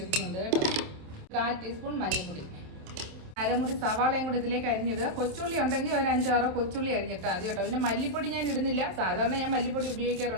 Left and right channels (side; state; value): left; late; 27 ms